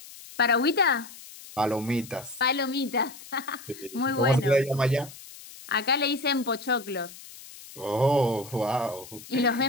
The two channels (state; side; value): noise; left; hiss, 17 dB below the sound